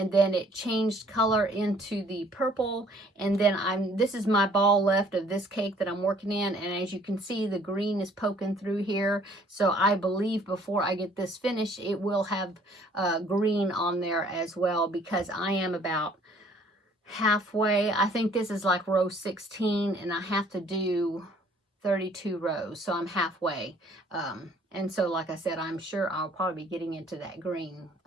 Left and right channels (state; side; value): normal; both; correlation 0.58